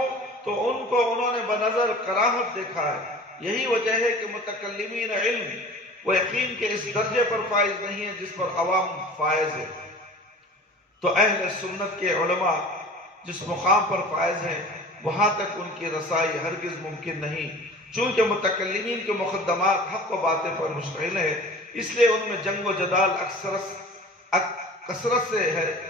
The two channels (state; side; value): normal; both; correlation 0.41